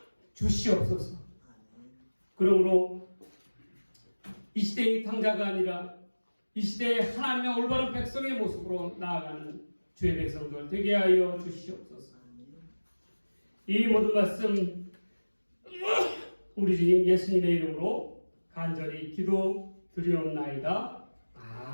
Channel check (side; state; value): both; inverted; correlation -1.00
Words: 주시옵소서. 그러므로 이 시대의 당자가 아니라 이 시대에 하나님의 올바른 백성의 모습으로 나아가는 주의 백성들 되게 하여 주시옵소서. 이 모든 말씀 우리 주님 예수님의 이름으로 간절히 기도 드리옵나이다.